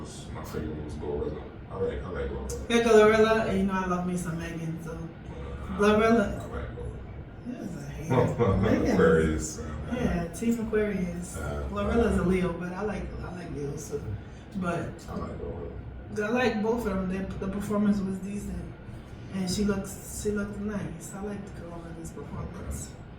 my favorite was Glorilla. I like Glorilla. Yeah, Glorilla, and I love me some Megan, so Glorilla. I like Glorilla. Aquarius. Yeah, Team Aquarius. Glorilla's a Leo, but I like Leos too. But I like Glorilla. I like both of them. The performance was decent, and she looked nice. I liked Glorilla's performance.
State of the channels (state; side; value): identical; both; correlation 1.00